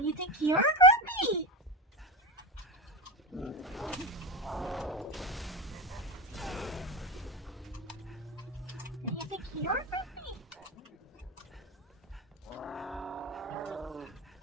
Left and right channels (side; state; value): both; normal; correlation 0.20